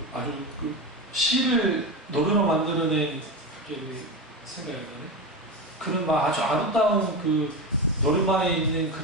아주 시를 노래로 만들어낸 생각이 나네. 그런 막 아주 아름다운 노래방에 있는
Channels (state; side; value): normal; both; correlation 0.20